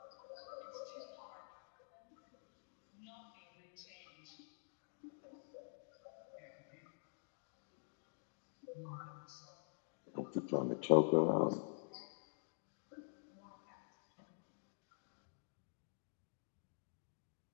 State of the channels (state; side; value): silent; right; digital silence